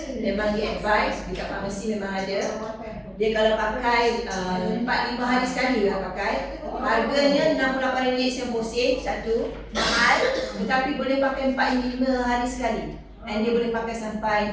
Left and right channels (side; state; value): both; identical; correlation 1.00